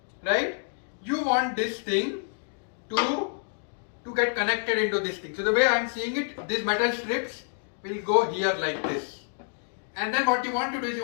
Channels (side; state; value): right; silent; 59 dB below the other